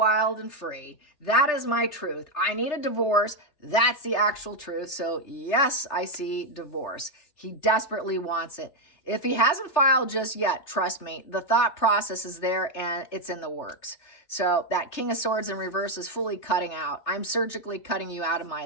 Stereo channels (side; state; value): right; late; 3.4 ms